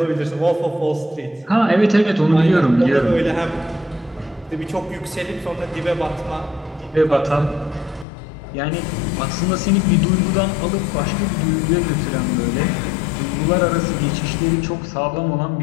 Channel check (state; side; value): drops out; right; at 8.1 s